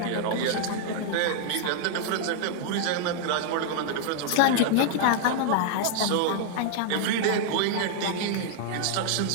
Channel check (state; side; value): different; both; correlation 0.00